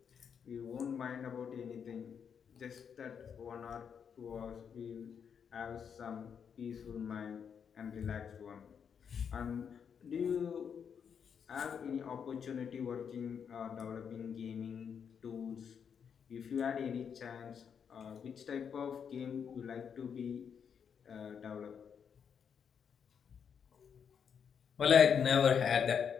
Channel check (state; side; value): quieter; right; 7.2 dB